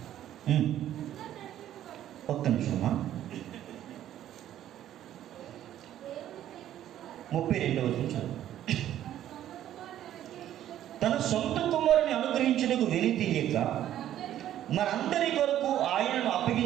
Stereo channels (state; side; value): quieter; left; 11.8 dB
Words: ఒక్క నిమిషమా. 32వ వచనం. తన సొంత కుమారుని అనుగ్రహించుటకు వెనుతీయక మనందరి కొరకు ఆయనను